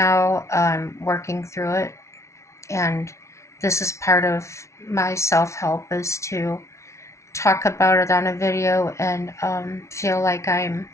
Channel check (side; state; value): right; late; 0.13 ms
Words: I'm working through it, and this is part of my self-help is to talk about it on a video and feel like I'm